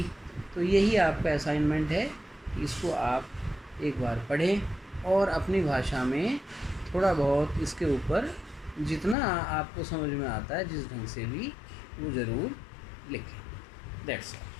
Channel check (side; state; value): right; drops out; at 9.2 s